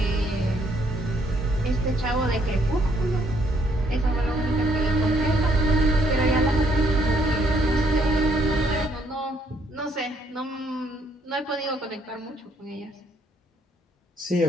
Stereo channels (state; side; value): normal; both; correlation 0.69